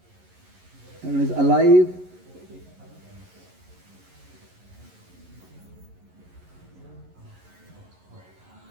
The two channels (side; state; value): left; late; 11 ms